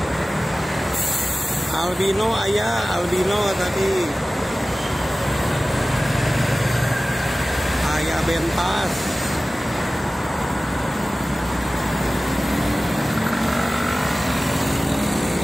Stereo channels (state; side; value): normal; both; correlation 0.97